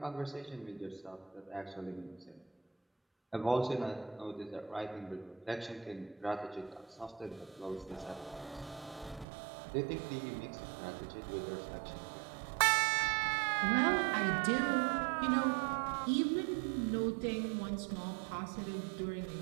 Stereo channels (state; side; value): drops out; left; at 9.2 s